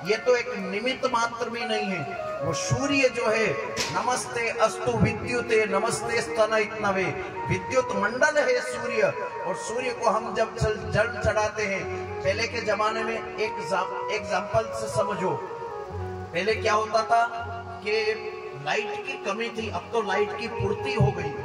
ये तो एक निमित्त मात्र भी नहीं है। वो सूर्य जो है, नमस्ते अस्तु विद्युते नमस्ते स्तनयित्नवे, विद्युत मंडल है सूर्य। और सूर्य को हम जब जल चढ़ाते हैं, पहले के जमाने में एक एग्जाम्पल से समझो। पहले क्या होता था कि लाइट की कमी थी, अब तो लाइट की पूर्ति हो गई।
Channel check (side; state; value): both; identical; correlation 1.00